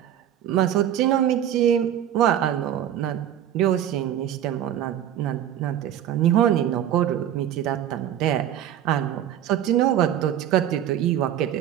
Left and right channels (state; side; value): quieter; left; 10.7 dB